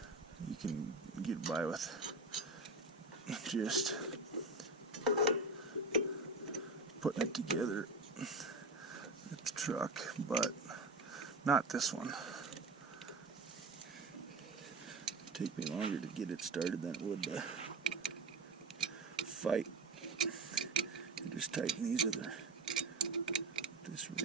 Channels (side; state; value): left; quieter; 3.4 dB